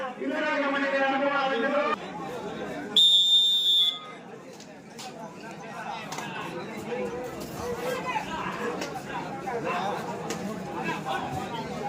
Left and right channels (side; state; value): both; identical; correlation 1.00